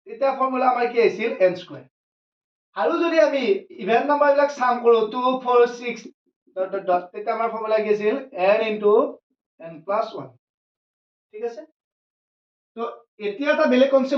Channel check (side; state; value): both; identical; correlation 1.00